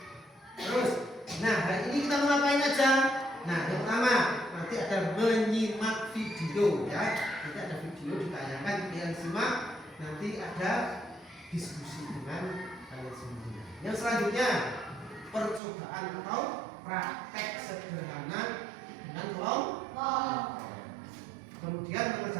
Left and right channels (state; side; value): drops out; left; at 15.6 s